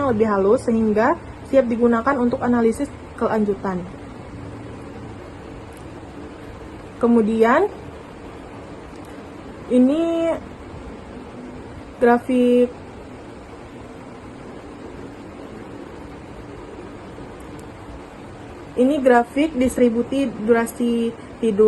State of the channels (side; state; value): both; identical; correlation 1.00